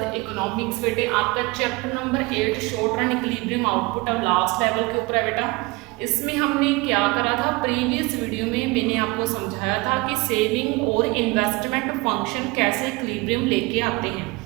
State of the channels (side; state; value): left; quieter; 24.2 dB